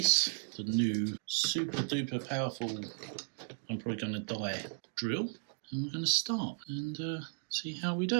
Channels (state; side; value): silent; left; digital silence